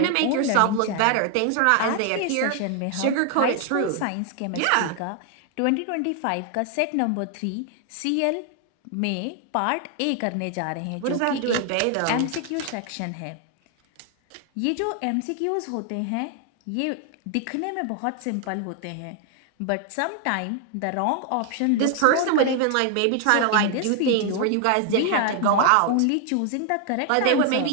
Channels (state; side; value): different; both; correlation 0.00